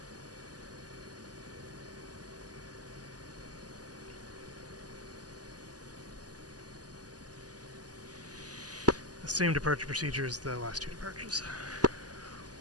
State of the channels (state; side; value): late; left; 0.68 ms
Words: The same departure procedure as the last 2 departures.